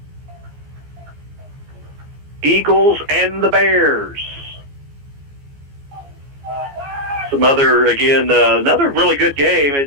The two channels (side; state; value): left; late; 14 ms